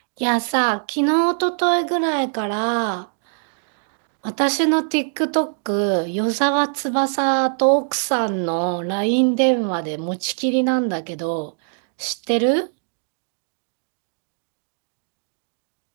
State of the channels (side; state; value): left; silent; digital silence